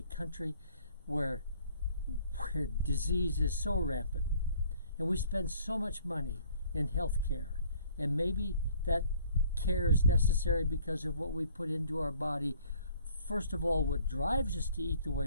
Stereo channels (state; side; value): inverted; both; correlation -0.58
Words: country where disease is so rampant, and we spend so much money in health care, and maybe that care is necessary because of what we put into our body. First of all, what drives us to eat the